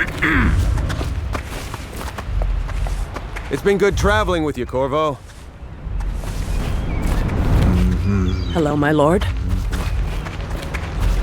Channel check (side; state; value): both; identical; correlation 1.00